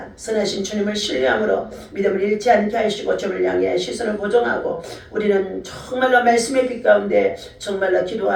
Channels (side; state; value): both; identical; correlation 1.00